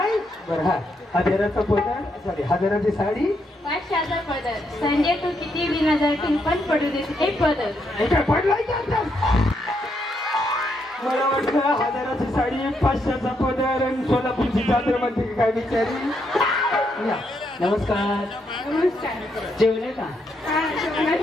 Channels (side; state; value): both; normal; correlation 0.78